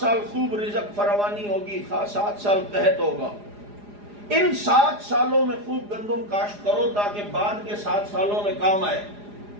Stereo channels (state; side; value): late; left; 4.9 ms